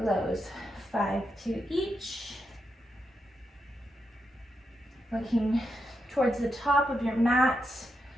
5 to each. Looking towards the top of your mat,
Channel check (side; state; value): both; normal; correlation 0.84